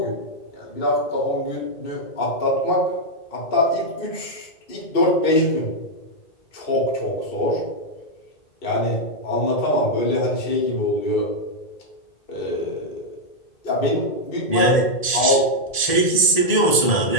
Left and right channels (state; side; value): late; right; 1.7 ms